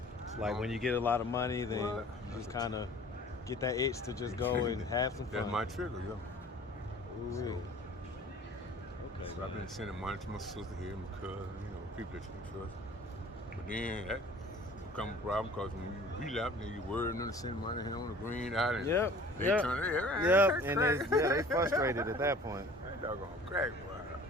It's like when you get a lot of money, then you just kind of get that itch to just go and have some fun. That's my trigger, yo. Ooh, okay. So I've been sending money to my sister here, my cousin, people that you can trust. But then that become a problem because when you relapse, then you worry them to send money here on the green out, and they turn their and they frustrated at that point. That doggone crack, boy.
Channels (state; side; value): normal; both; correlation 0.47